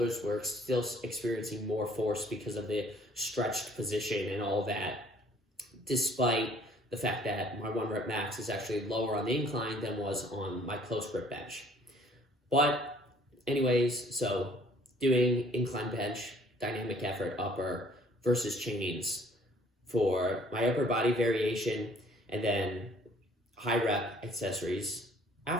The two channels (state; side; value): normal; both; correlation 0.57